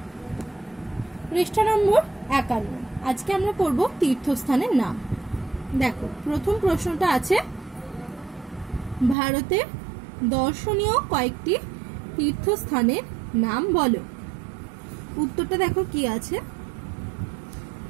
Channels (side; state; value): left; drops out; at 9.2 s